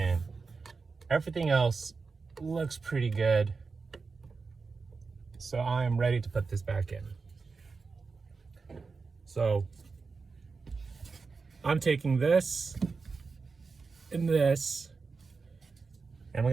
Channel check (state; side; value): quieter; left; 4.5 dB